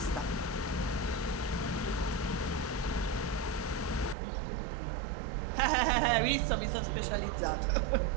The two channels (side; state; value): left; drops out; at 4.2 s